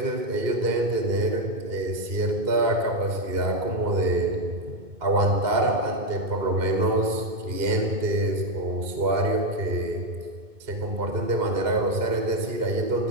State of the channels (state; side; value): late; left; 2.2 ms